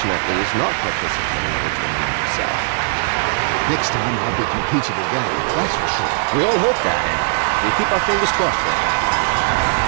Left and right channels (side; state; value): left; silent; digital silence